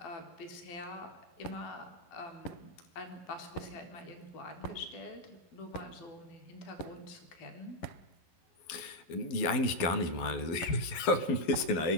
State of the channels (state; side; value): late; right; 12 ms